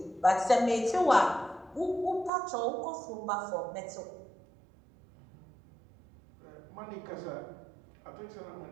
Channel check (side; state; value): left; drops out; at 2.3 s